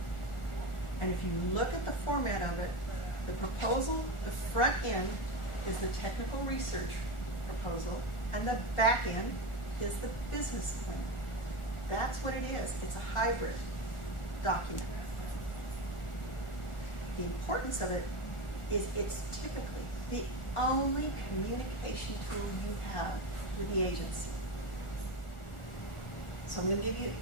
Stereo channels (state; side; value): late; right; 1.4 ms